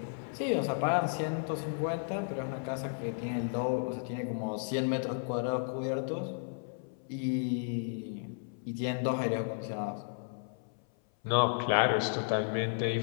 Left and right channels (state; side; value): silent; right; 55 dB below the other